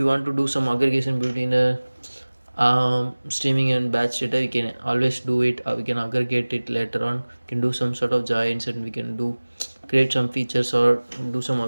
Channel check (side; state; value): both; inverted; correlation -1.00